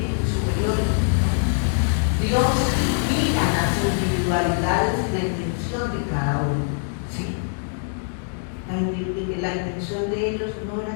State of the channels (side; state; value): right; silent; digital silence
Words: superiores. Dios mira las individualidades y la intención de cada uno, ¿sí? La intención de ellos no era